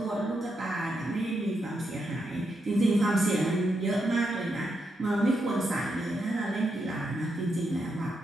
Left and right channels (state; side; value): normal; both; correlation 0.82